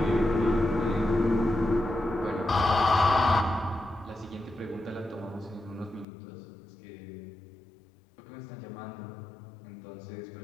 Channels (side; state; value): right; drops out; at 6.1 s